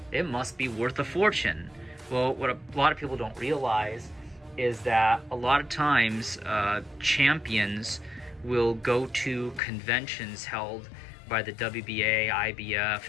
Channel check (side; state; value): right; drops out; at 9.6 s